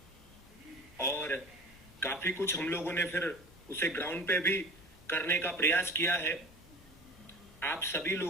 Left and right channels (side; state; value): both; normal; correlation 0.39